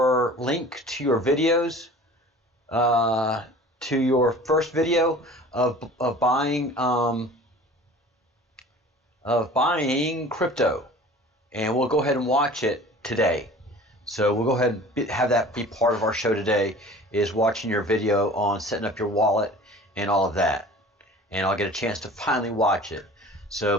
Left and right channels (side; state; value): both; normal; correlation 0.43